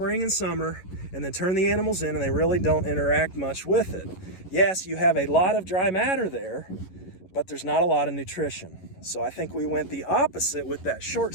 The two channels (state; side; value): late; right; 11 ms